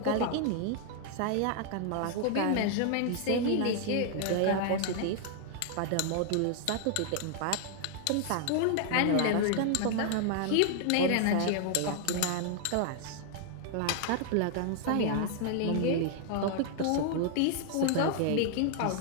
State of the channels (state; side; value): different; both; correlation 0.00